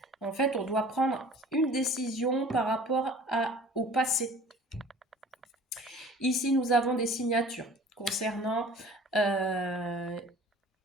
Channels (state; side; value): normal; both; correlation 0.46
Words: En fait, on doit prendre une décision par rapport au passé. Ici, nous avons des signatures concernant un